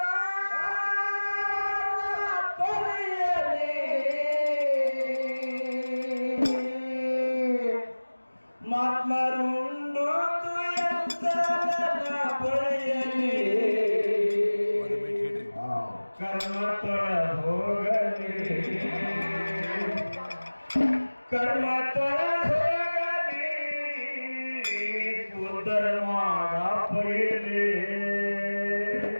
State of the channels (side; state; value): both; inverted; correlation -1.00